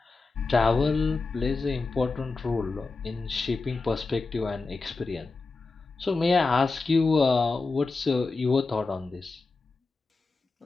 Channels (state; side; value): quieter; right; 3.8 dB